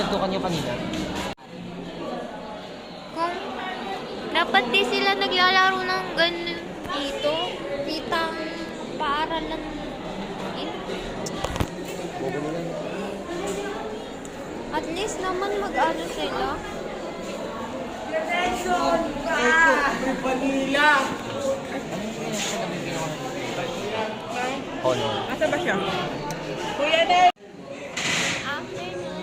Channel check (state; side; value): identical; both; correlation 1.00